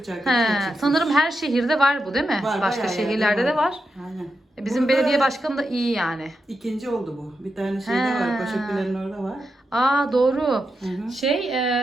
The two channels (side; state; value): both; normal; correlation 0.87